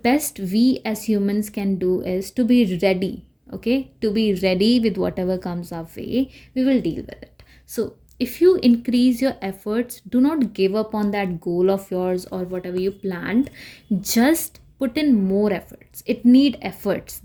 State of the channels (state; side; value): identical; both; correlation 1.00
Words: we as humans can do is to be ready. Okay, to be ready with whatever comes our way, we will deal with it. So if you increase your efforts, do not give up on that goal of yours or whatever you planned. Just put in more efforts, it need efforts,